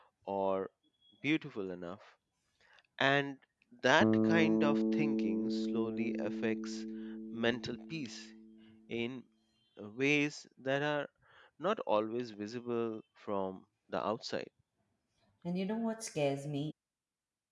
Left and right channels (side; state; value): both; identical; correlation 1.00